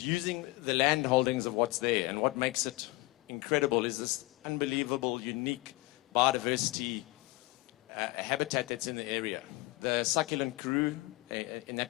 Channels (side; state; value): right; quieter; 22.1 dB